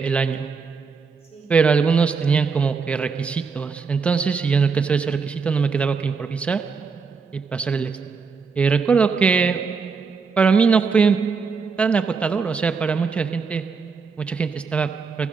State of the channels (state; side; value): quieter; left; 5.2 dB